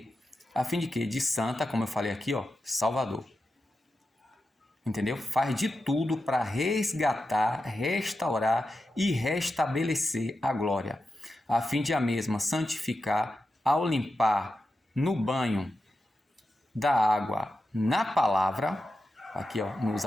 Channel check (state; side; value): normal; both; correlation 0.90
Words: De santa, como eu falei aqui, ó, Salvador. Entendeu? Faz de tudo para resgatar, restaurar e restabelecer a glória, a fim de a mesma santificar ao limpar no banho da água na palavra. Aqui, ó, não